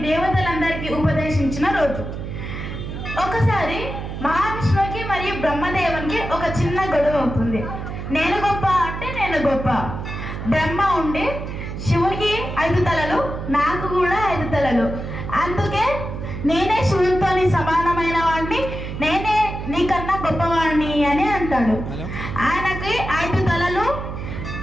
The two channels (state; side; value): noise; right; hum, 7 dB below the sound